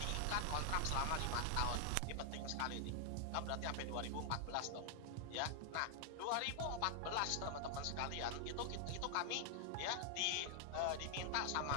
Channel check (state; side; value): different; both; correlation 0.00